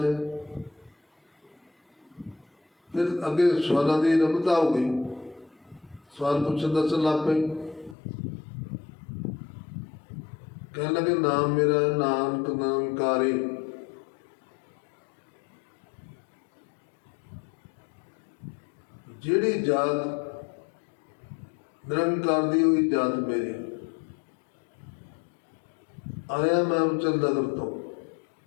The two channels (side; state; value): right; drops out; at 8.0 s